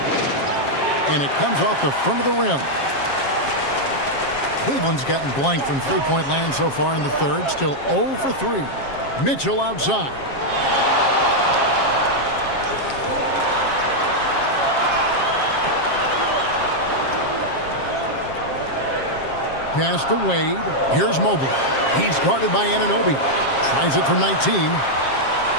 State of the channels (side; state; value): right; late; 7.4 ms